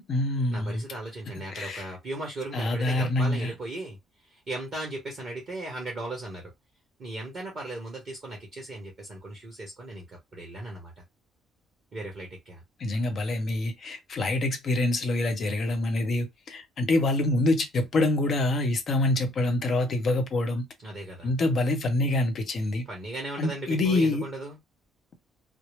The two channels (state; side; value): normal; both; correlation 0.65